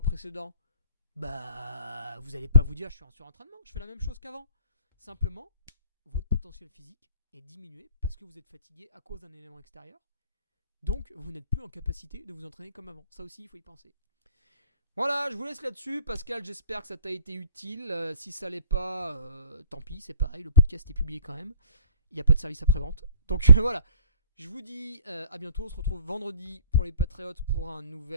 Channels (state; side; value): inverted; both; correlation -0.54